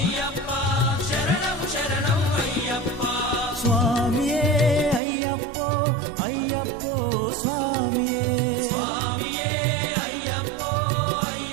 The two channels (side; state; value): left; drops out; at 5.0 s